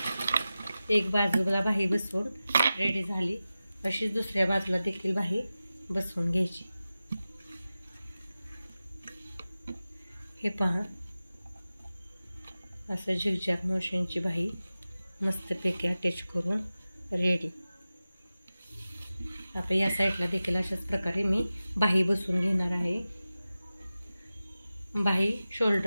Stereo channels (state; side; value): inverted; both; correlation -0.95